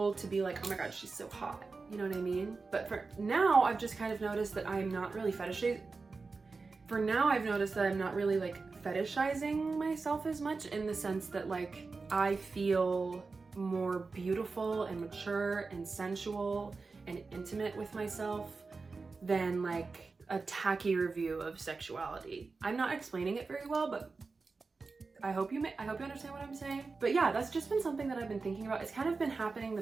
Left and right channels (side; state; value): left; quieter; 4.2 dB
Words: to be like, oh my God, she's so hot. You know what I mean? But for now, I've just kind of noticed that I'm not really fetishizing myself as much, in the sense that like, I feel more beautiful and mature and sensual and intimate with myself than like a tacky review of sexuality. I'm not explaining it very well, but I hope you understand what I'm saying. But yeah, that's just been something that I've been thinking about. It's kind of been happening